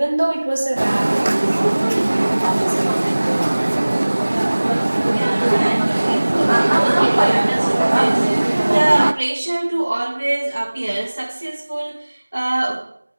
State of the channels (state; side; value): inverted; both; correlation -1.00